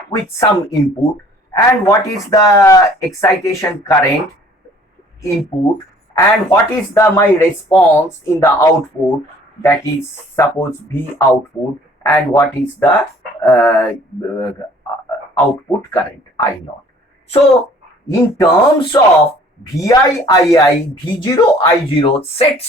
with some input, and what is the excitation current input, and what is the my response in the output, that is suppose V output, and what is the output current I naught. So in terms of VI, II, V0, I0,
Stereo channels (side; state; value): both; normal; correlation 0.55